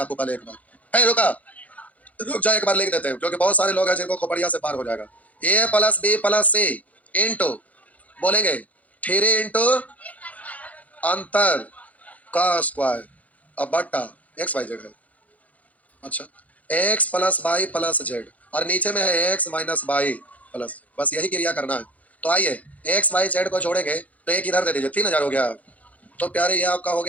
पहले एक बार, है रुका, रुक जाए एक बार लिख देते हैं, क्योंकि बहुत सारे लोग हैं जिनको खोपड़िया से पार हो जाएगा। ए plus B plus C into, बोलेंगे 3 इंटू अंतर का स्क्वायर, अब बट्टा एक्स वाई जेड है। अच्छा, x plus y plus z, और नीचे में है एक्स माइनस वाई प्लस, बस यही क्रिया करना है। तो आइए एक्स वाई जेड को जोड़ेंगे, तो एक इधर दे दीजिए, 3000 हो गया। तो प्यारे ये आपका हो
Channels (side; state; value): right; late; 0.071 ms